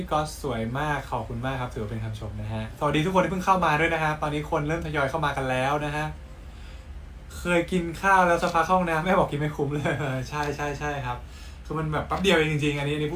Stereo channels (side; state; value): both; identical; correlation 1.00